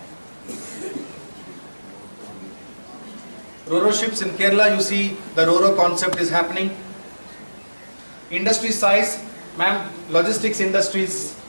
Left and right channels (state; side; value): inverted; both; correlation -1.00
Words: Ro-Ro ships in Kerala, you see the Ro-Ro concept is happening. Industry size, ma'am, logistics industry is